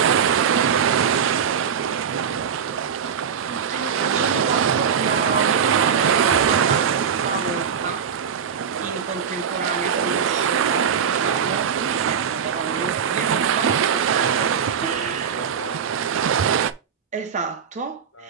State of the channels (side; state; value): left; quieter; 7.2 dB